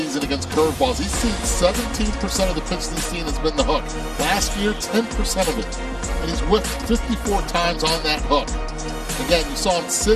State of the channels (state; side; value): identical; both; correlation 1.00